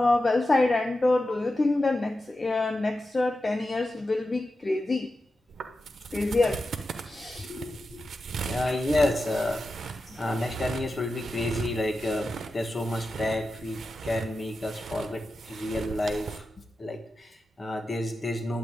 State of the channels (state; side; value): normal; both; correlation 0.91